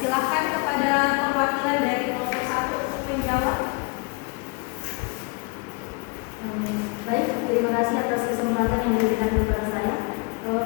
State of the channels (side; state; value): right; quieter; 30.3 dB